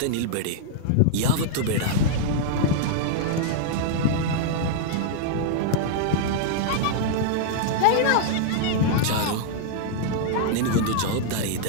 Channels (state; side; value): different; both; correlation -0.01